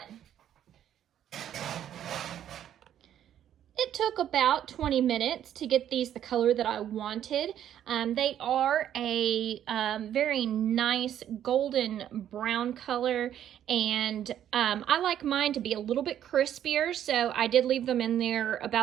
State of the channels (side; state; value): left; quieter; 10.5 dB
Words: It took about 20 minutes to get these the color that I wanted. They are a very nice golden brown color, and I like mine to be a little bit crispier, so I did leave them in there